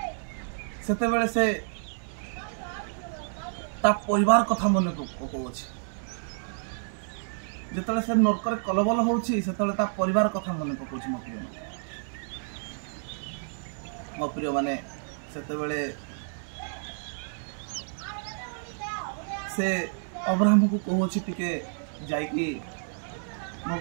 सेतेबेले से ता परिवार कथा मन पकाउछि। जेतेबेले से नरकर कलबल होछि सेतेबेले ता परिवार कथा मन पकाउछि। मो प्रिय माने सेतेबेले से अब्राहम को कहूछि टिके जाइकी मो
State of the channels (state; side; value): silent; left; digital silence